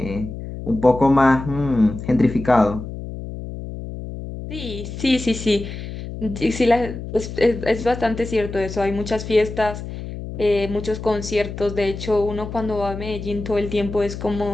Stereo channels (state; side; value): noise; left; hum, 9 dB below the sound